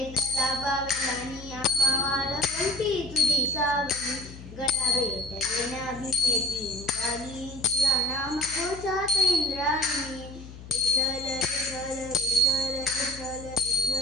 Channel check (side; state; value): left; noise; hum, 15 dB below the sound